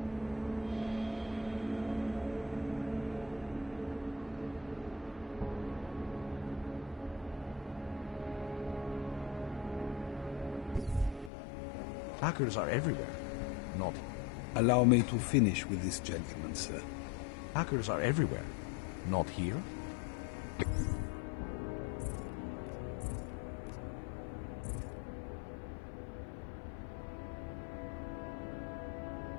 Hackers are everywhere. Not. Allow me to finish with this gentleman, sir. Hackers are everywhere. Not here.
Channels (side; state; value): right; drops out; at 11.3 s